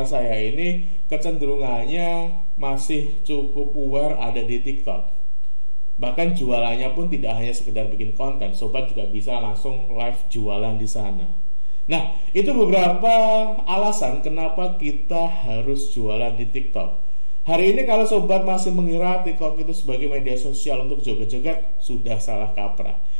saya ini, kecenderungannya masih cukup aware ada di TikTok. Bahkan jualannya pun tidak hanya sekedar bikin konten, sobat juga bisa langsung live jualan di sana. Nah, itu beberapa alasan kenapa kita harus jualan di TikTok. Hari ini kalau sobat masih mengira TikTok itu sebagai media sosial untuk joget-joget, sudah salah kaprah.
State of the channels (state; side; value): inverted; both; correlation -1.00